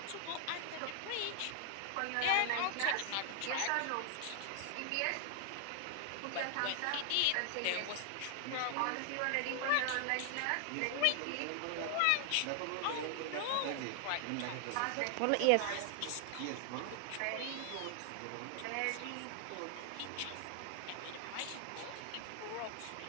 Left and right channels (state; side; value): different; both; correlation 0.00